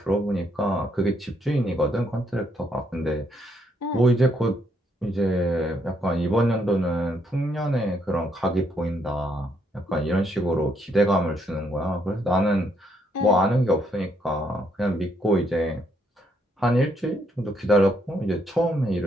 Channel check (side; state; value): both; normal; correlation 0.73